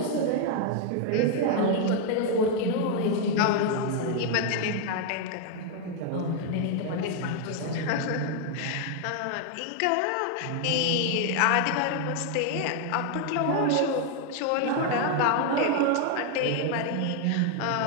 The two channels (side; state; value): both; different; correlation 0.00